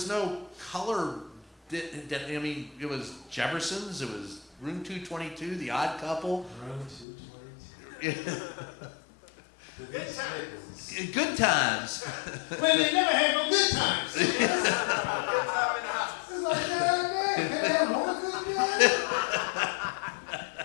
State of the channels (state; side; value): drops out; right; at 7.1 s